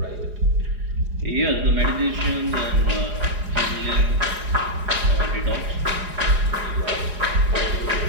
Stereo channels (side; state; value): left; late; 4.8 ms